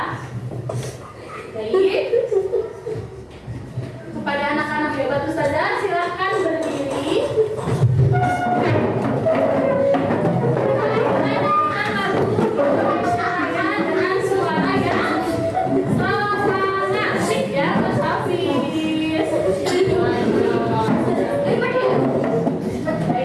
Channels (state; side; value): identical; both; correlation 1.00